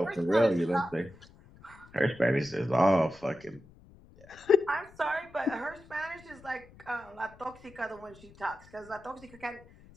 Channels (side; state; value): left; noise; rumble, 24 dB below the sound